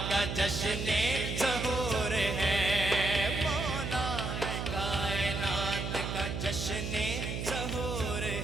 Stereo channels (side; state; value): right; noise; hum, 4 dB below the sound